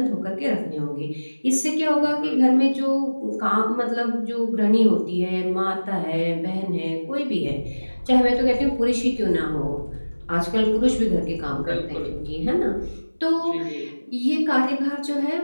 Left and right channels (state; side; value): inverted; both; correlation -1.00